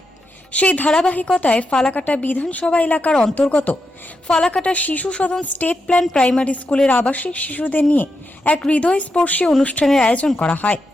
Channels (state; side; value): normal; both; correlation 0.85